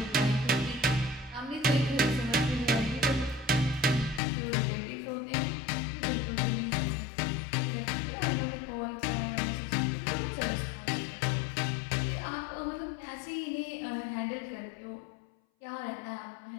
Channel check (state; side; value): drops out; right; at 4.2 s